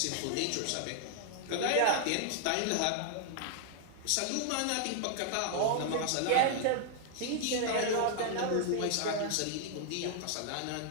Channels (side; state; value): both; different; correlation -0.01